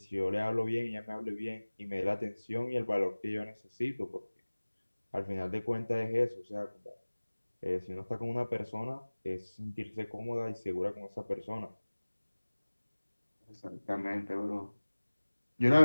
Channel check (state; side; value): inverted; both; correlation -1.00